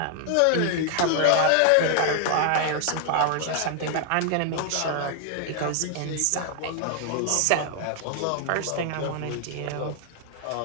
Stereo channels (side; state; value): both; different; correlation 0.00